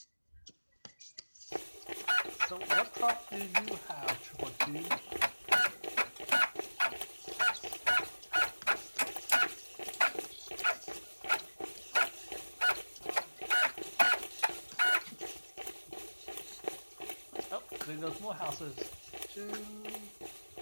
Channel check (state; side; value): inverted; both; correlation -1.00